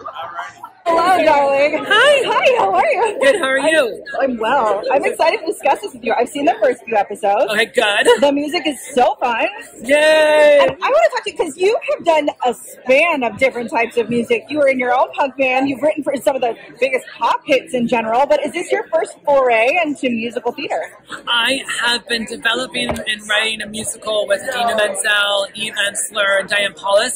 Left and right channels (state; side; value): identical; both; correlation 1.00